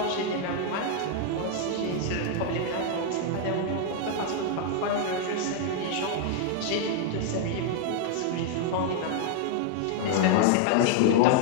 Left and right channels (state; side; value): different; both; correlation 0.00